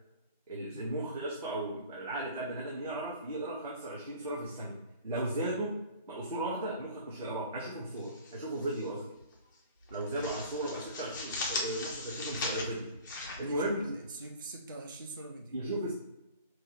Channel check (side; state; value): both; inverted; correlation -0.44